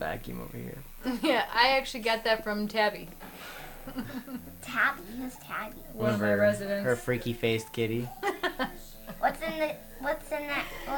over here. Yeah, I actually got that from Tabby. Tabby, who's Tabby? One of my residents. Her freaky faced kitty. What's in that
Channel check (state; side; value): identical; both; correlation 1.00